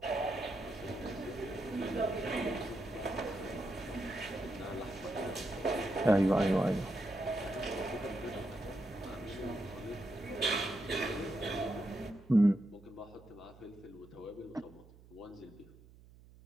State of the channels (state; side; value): noise; right; hum, 22 dB below the sound